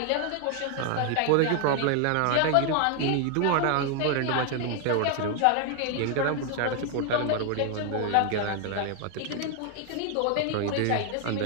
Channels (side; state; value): both; different; correlation 0.00